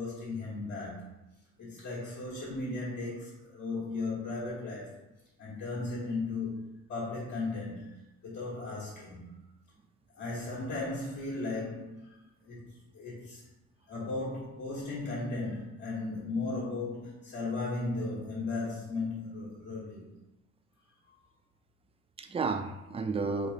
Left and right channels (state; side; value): normal; both; correlation 0.48